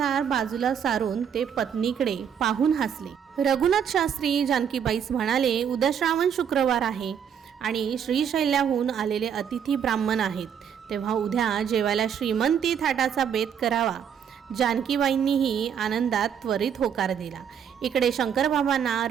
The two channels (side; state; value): left; quieter; 8.1 dB